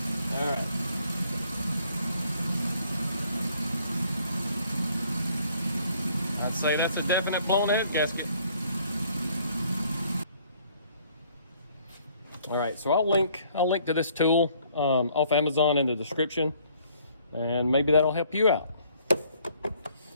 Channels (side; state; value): both; inverted; correlation -0.62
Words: All right. I'd say that's a definite blown head gasket. All right, so I'll link to this tool off Amazon in the description, and maybe that'll help you out.